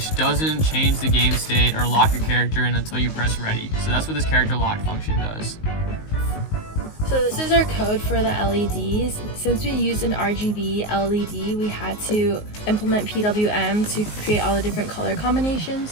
doesn't change the game state or lock your character in until you press ready. So that's what this character lock function does. So this is our code for the LEDs. Since we used an RGB LED, we had to implement PWM to create all the different color combinations.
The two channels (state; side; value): late; right; 19 ms